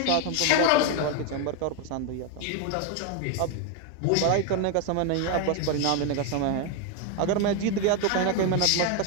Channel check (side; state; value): both; different; correlation 0.01